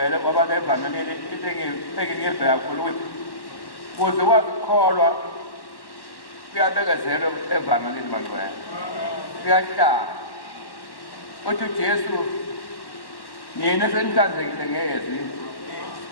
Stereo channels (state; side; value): late; right; 1.1 ms